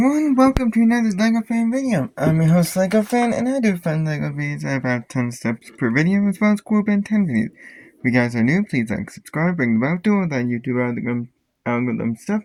welcome to another LEGO Fan video. I'm your host LEGO Fan, and I do fun LEGO videos. I have about 10 steps per video, as well as cool Ben 10 videos. If you guys are new, please like, subscribe, ring the bell, do all that YouTube algorithm stuff.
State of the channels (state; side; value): identical; both; correlation 1.00